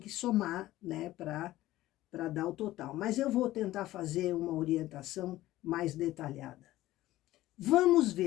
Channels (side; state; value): right; quieter; 15.9 dB